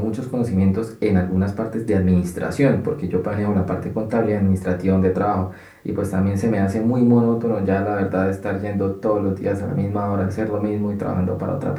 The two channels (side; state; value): both; identical; correlation 1.00